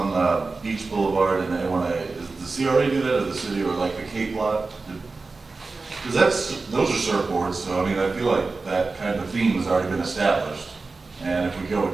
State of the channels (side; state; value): left; quieter; 3.9 dB